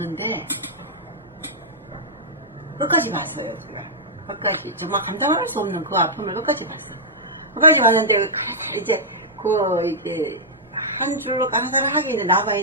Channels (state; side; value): normal; both; correlation -0.10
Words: 끝까지 봤어요. 끝까지 정말 감당할 수 없는 그 아픔을 끝까지 봤어요. 끝까지 봤는데 이제 이게 한 줄로 강사를 하기에는